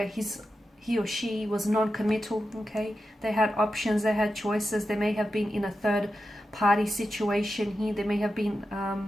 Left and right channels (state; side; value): normal; both; correlation 0.90